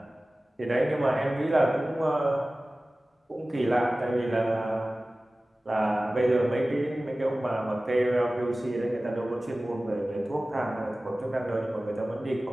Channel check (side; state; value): both; normal; correlation 0.97